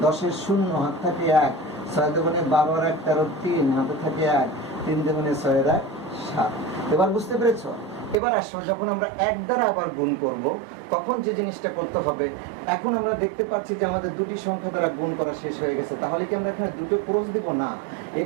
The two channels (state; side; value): drops out; left; at 8.2 s